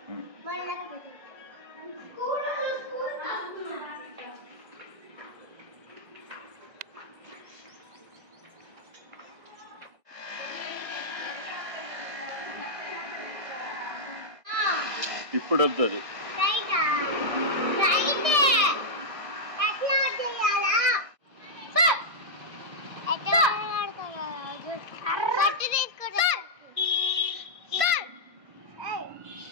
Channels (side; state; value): left; late; 1.6 ms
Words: ఇప్పుడు వద్దు అది.